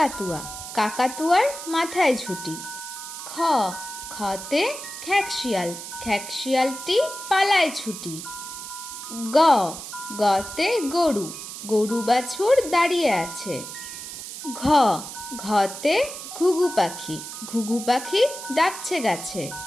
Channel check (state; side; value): noise; right; hiss, 10 dB below the sound